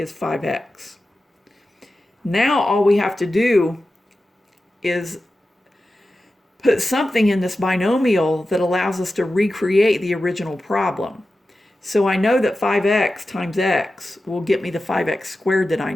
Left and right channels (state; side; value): normal; both; correlation 0.93